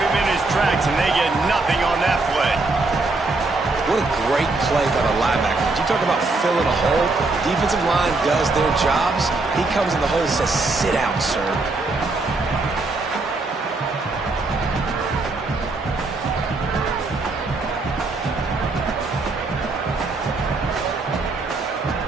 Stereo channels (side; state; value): left; quieter; 3.4 dB